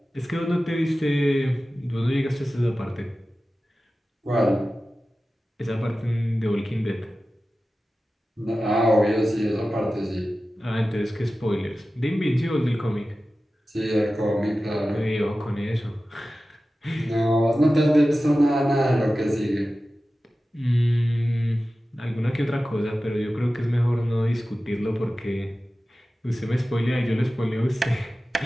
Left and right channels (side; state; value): both; normal; correlation 0.95